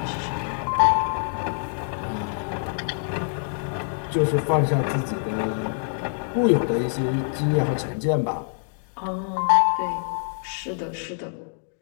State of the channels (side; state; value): right; silent; digital silence